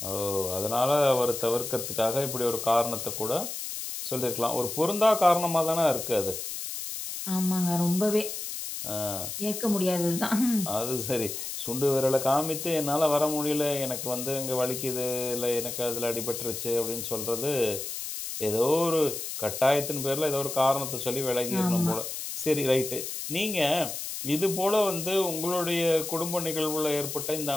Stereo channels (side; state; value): left; noise; hiss, 6 dB below the sound